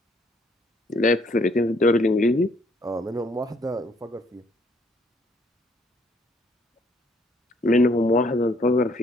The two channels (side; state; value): both; normal; correlation 0.65